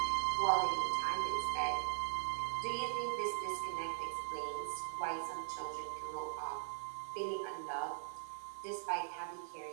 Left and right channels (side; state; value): left; silent; digital silence